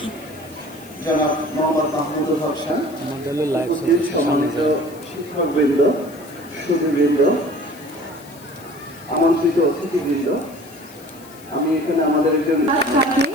জনাব মোহাম্মদ মাহমুদুল হক খান, উপস্থিত সম্মানিত শিক্ষকবৃন্দ, সুধীবৃন্দ, আমন্ত্রিত অতিথিবৃন্দ। আমি এখানে আমাদের একজন তাকে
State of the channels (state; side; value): noise; left; hiss, 22 dB below the sound